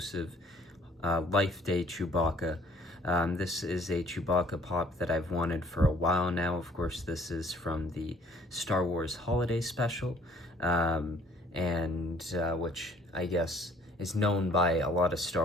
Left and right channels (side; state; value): both; normal; correlation 0.57